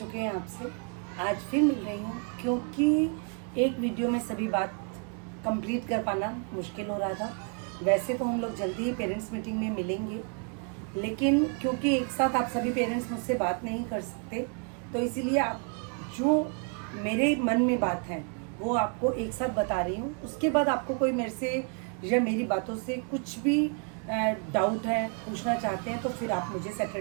हैं आपसे, आज फिर मिल रही हूँ क्योंकि एक वीडियो में सभी बात कंप्लीट कर पाना मुश्किल हो रहा था। वैसे तो हम लोग जल्दी ही पेरेंट्स मीटिंग में मिलेंगे, लेकिन क्योंकि एक साथ आप सभी पेरेंट्स मुझसे बात नहीं कर सकते, तो इसीलिए आप जो मेरे मन में बात है वो आपको एक साथ बता रही हूँ। उसके बाद आपको कोई मेरे से या मेरी बातों से कुछ भी डाउट है, पूछना चाहते हैं, तो फिर आप मुझे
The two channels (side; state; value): left; quieter; 39.5 dB